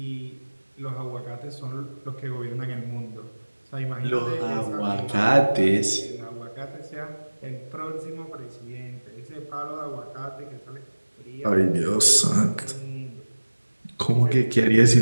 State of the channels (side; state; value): both; inverted; correlation -1.00